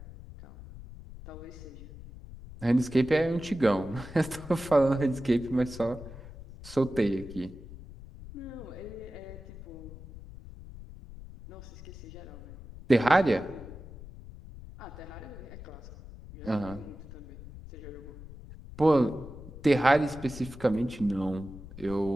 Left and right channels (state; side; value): noise; left; rumble, 15 dB below the sound